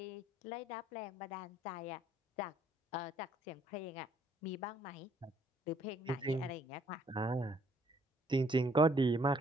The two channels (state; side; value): normal; both; correlation 0.64